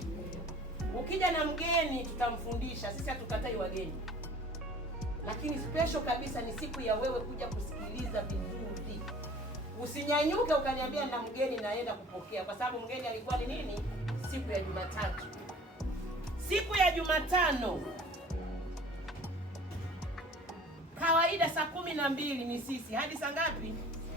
Ukija na mgeni tutamfundisha, sisi hatukatai wageni, lakini special kabisa ni siku ya wewe kuja kusikiliza vizuri. Usinyanyuke ukaniambia na mgeni naenda kupokea, kwa sababu mgeni alikuwa ni nini? Siku ya Jumatatu. Siku ya Jumatano kawaida saa 12 ni sisi hadi saa ngapi?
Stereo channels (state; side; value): normal; both; correlation 0.48